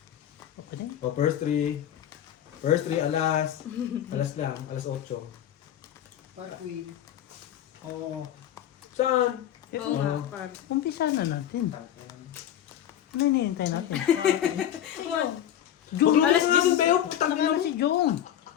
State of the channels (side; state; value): right; quieter; 10.9 dB